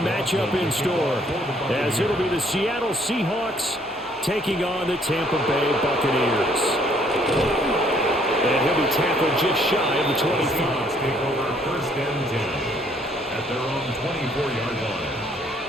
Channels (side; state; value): both; normal; correlation 0.64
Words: in store, as it'll be the Seattle Seahawks taking on the Tampa Bay Buccaneers. And he'll be tackled just shy of the 25. Take over first and 10 at their own 24-yard line.